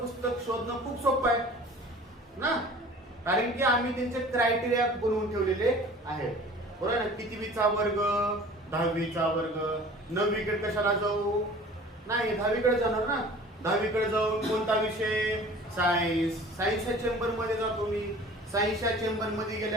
शोधणं खूप सोपं आहे ना, कारण की आम्ही त्यांचे क्रायटेरिया बनवून ठेवलेले आहेत. बरोबर ना. कितवीचा वर्ग, 10वीचा वर्ग. 9वीकडे कशाला जाऊ? नाही, 10वीकडे जाणार ना. 10वीकडे जाऊन कोणता विषय? सायन्स. सायन्सच्या चेंबर मध्ये जातो मी. सायन्सच्या चेंबर मध्ये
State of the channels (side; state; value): both; normal; correlation 0.45